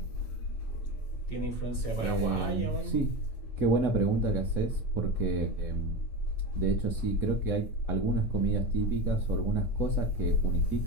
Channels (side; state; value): right; late; 8.8 ms